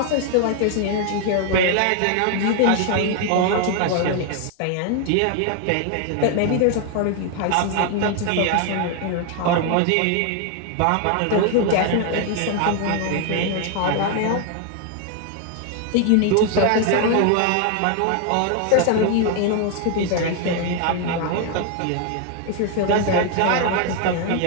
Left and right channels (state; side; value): different; both; correlation 0.01